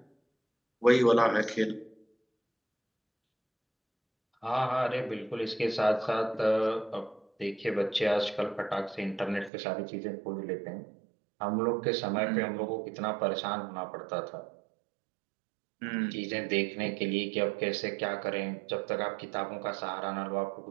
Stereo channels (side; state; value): left; drops out; at 9.5 s